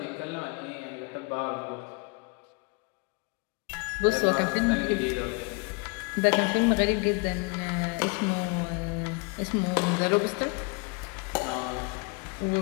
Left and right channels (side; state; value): right; quieter; 30.7 dB